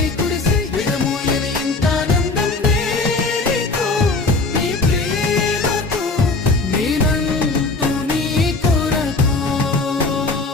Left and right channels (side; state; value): right; quieter; 3.6 dB